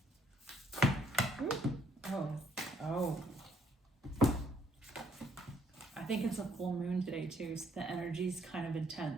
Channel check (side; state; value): both; normal; correlation 0.69